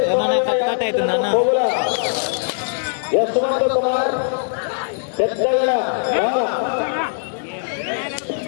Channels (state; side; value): silent; right; digital silence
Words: ఏమన్నా కట్ అవుతుందన్న యశ్వంత్ కుమార్ పెద్దగా